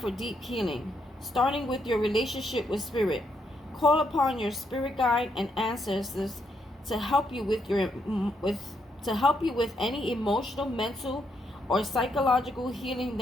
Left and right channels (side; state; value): both; normal; correlation 0.77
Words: deep healing, starting with your relationship with Spirit. Call upon your spirit guide and ancestors to help you to help you with any emotional, mental, or psychological healing